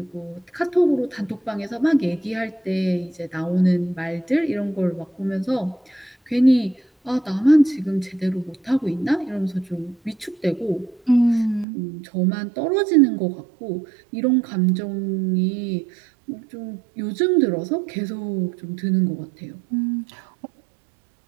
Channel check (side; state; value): left; drops out; at 11.7 s